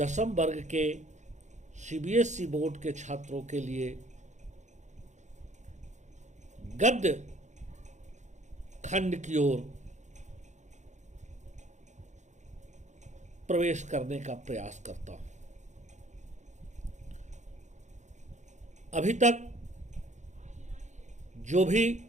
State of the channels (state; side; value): late; left; 0.34 ms